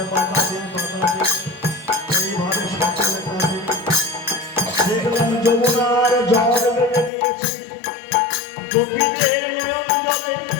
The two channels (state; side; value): drops out; right; at 7.1 s